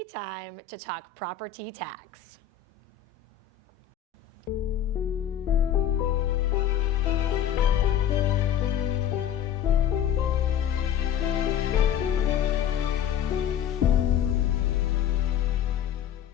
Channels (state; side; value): quieter; right; 9.8 dB